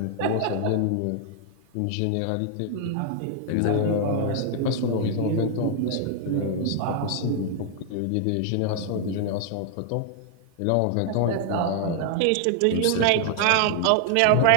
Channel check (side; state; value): both; different; correlation 0.00